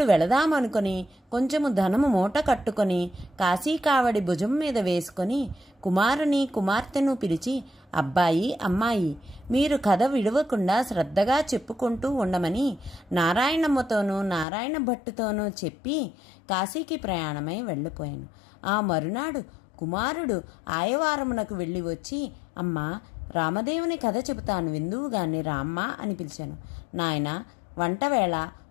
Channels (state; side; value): drops out; right; at 14.5 s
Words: వెళదామనుకొని కొంచెము ధనము మూట కట్టుకొని కాశీ కావడి భుజం మీద వేసుకొని కుమారుని, కుమార్తెను పిలిచి, అబ్బాయి, అమ్మాయి, మీరు కథ విడవకుండా శ్రద్ధగా చెప్పుకుంటూ ఉండమని నారాయణమ్మతోనూ నారాయణ భట్టుతోనూ చెప్పి కాశీకి ప్రయాణమై వెళ్ళిపోయాను. ఆ మరునాడు కుమారుడు ఆయవారమునకు వెళ్ళి వచ్చి, అమ్మా, రామదేవుని కథ చెబుతాను విందువుగాని రామ్మా అని పిలిచాను. నాయన, వంటవేళ